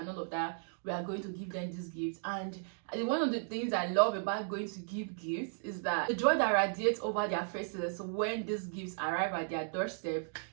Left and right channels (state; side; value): silent; left; digital silence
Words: all of that. We are going to give them these gifts. And one of the things I love about going to give gifts is that the joy that radiates over their faces when these gifts arrive at their doorstep,